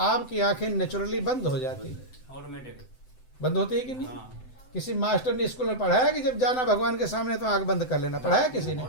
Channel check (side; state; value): right; late; 7.9 ms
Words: आंखें नेचुरली बंद हो जाती है। ऑटोमेटिक बंद होती है कि नहीं? किसी मास्टर ने स्कूल में पढ़ाया कि जब जाना भगवान के सामने तो आंख बंद कर लेना? पढ़ाया किसी ने?